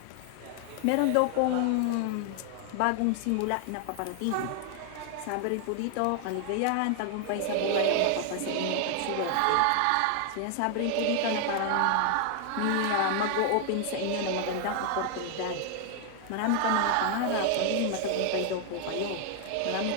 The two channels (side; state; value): both; different; correlation 0.00